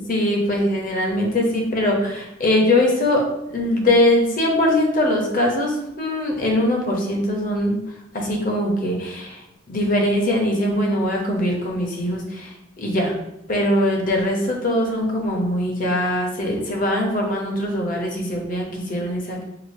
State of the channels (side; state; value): both; normal; correlation 0.40